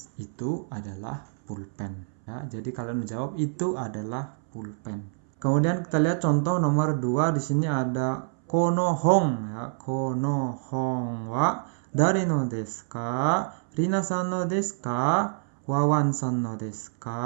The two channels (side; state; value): left; silent; 60 dB below the other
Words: Itu adalah pulpen. Ya, jadi kalian menjawab itu adalah pulpen. Kemudian kita lihat contoh nomor 2. Di sini ada kono hong ya. Kono hong wa dari no desu ka? Rina-san no desu ka? Wawan-san no desu